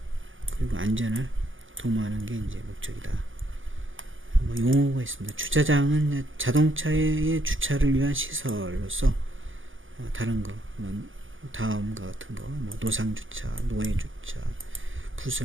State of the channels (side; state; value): left; late; 0.58 ms